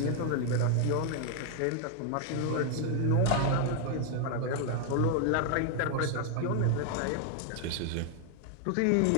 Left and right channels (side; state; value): both; different; correlation 0.00